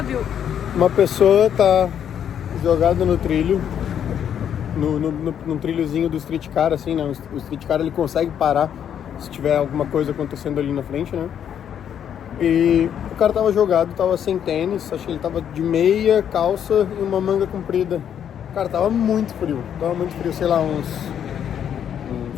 uma pessoa tá jogada no trilho, no trilhozinho do streetcar, assim, né? O streetcar ele consegue parar se tiver alguma coisa acontecendo ali na frente, né? E o cara tava jogado, tava sem tênis, acho que ele tava de meia, calça e uma manga comprida. Cara, tava muito frio, sei lá, uns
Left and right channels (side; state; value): right; quieter; 9.1 dB